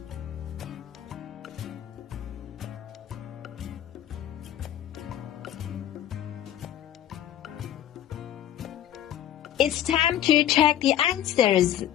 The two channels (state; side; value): quieter; right; 11.3 dB